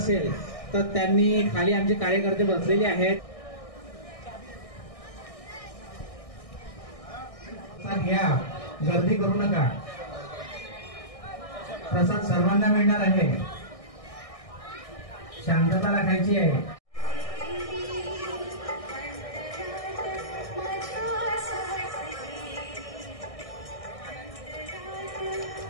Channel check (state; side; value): late; right; 1.6 ms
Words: तर त्यांनी खाली आमचे कार्यकर्ते बसलेले आहेत। घ्या, गर्दी करू नका। प्रसाद सर्वांना मिळणार आहे, शांतता राखायची आहे।